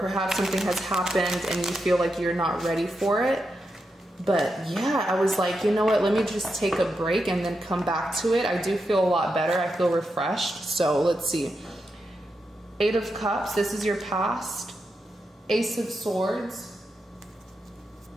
perhaps something has happened and you feel like you're not ready for it. But yeah, I was like, you know what, let me just take a break and then come back to it. I do feel a lot better. I feel refreshed. So let's see. Eight of Cups, this is your past. Ace of Swords.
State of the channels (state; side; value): normal; both; correlation 0.86